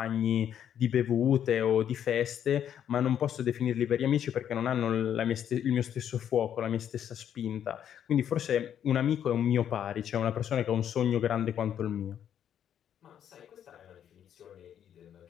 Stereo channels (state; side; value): quieter; right; 9.5 dB